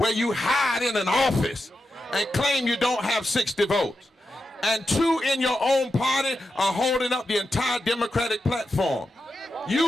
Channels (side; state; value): both; normal; correlation 0.88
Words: you hide in an office and claim you don't have 60 votes. And two in your own party are holding up the entire Democratic platform.